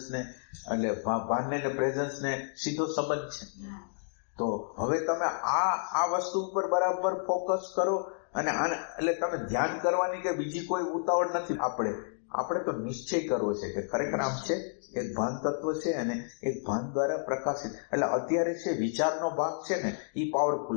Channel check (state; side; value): silent; right; digital silence